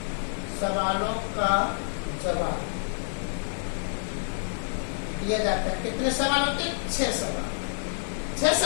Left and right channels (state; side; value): silent; right; digital silence